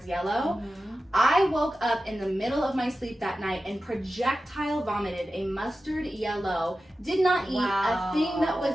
yellow. I woke up in the middle of my sleep that night and projectile vomited a mustard yellow, did not eat a thing that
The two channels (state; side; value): normal; both; correlation 0.94